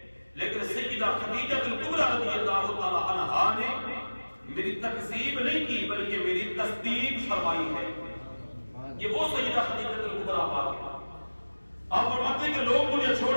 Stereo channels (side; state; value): both; inverted; correlation -1.00